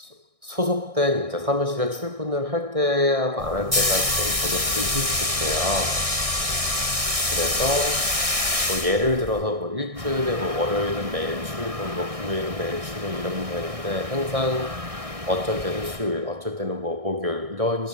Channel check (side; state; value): left; late; 1.6 ms